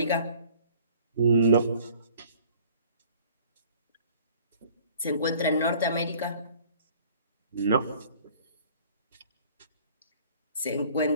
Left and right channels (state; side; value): inverted; both; correlation -0.52